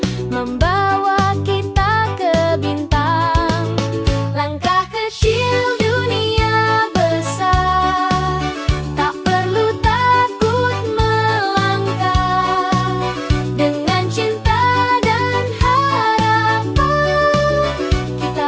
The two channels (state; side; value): identical; both; correlation 1.00